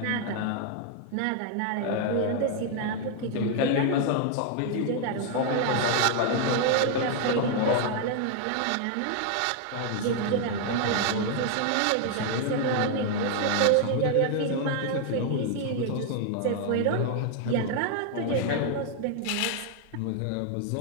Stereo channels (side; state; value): both; different; correlation 0.00